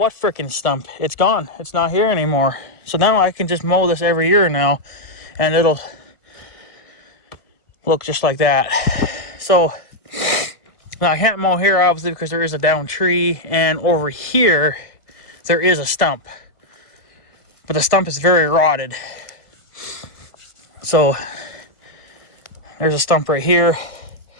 frickin' stump? It's gone. It's not here anymore. So now I can just mow this every year now, and it'll look just like that. So now I can't mow here, obviously, because there is a down tree, and over here there is a stump, but the stump is very rotted. So there's a stump right here.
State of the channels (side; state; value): right; late; 1.5 ms